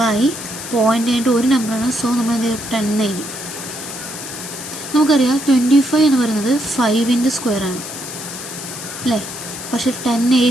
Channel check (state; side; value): noise; left; hiss, 9 dB below the sound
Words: ഒരു നമ്പറാണ്. സോ നമ്മൾ എന്ത് ചെയ്യും? 10 എഴുതി. നമുക്കറിയാം 25 എന്ന് പറയുന്നത് 5ൻ്റെ സ്ക്വയറാണ് അല്ലേ? പക്ഷേ 10